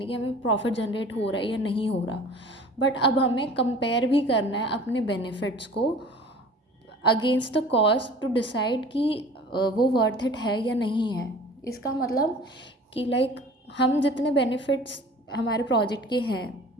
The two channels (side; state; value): both; normal; correlation 0.44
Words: कि हमें प्रॉफिट जनरेट हो रहा है या नहीं हो रहा, बट अब हमें कंपेयर भी करना है अपने बेनिफिट्स को against the cost to decide कि वो वर्थ इट है या नहीं है। इसका मतलब कि लाइक हम जितने बेनिफिट्स हमारे प्रोजेक्ट के हैं